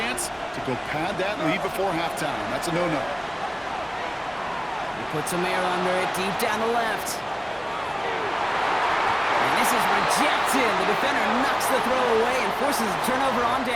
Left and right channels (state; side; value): identical; both; correlation 1.00